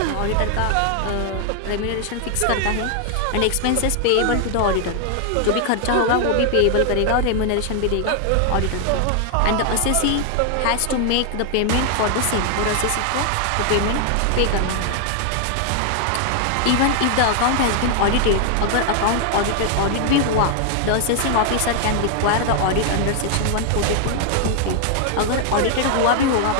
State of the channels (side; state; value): both; different; correlation 0.00